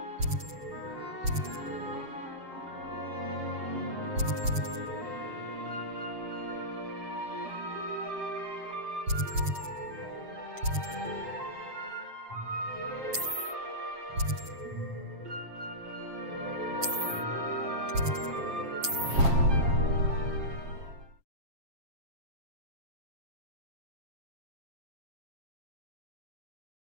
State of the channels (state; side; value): late; left; 7.5 ms